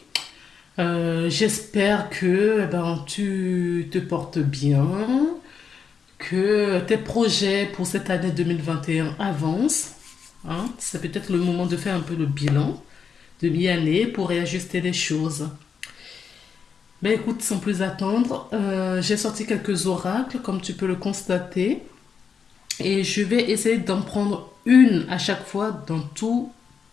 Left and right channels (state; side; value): quieter; right; 6.3 dB